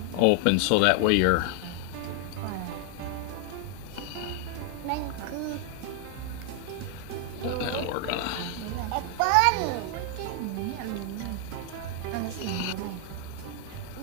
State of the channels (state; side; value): different; both; correlation 0.00